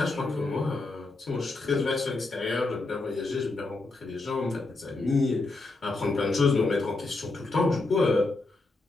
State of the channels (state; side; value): quieter; right; 3.3 dB